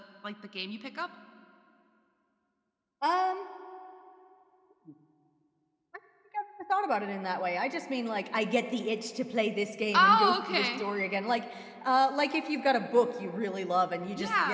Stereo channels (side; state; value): both; identical; correlation 1.00